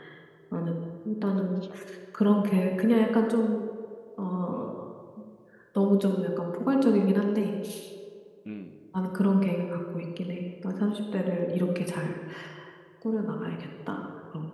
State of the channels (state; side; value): identical; both; correlation 1.00